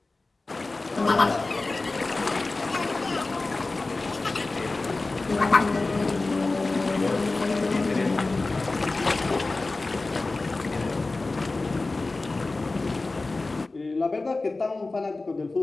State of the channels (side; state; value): right; quieter; 3.3 dB